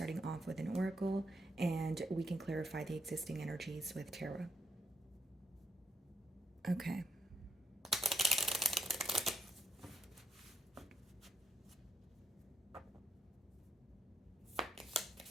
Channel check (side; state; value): both; normal; correlation 0.74